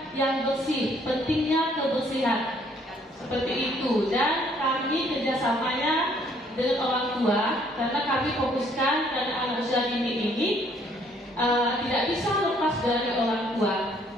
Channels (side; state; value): both; normal; correlation 0.64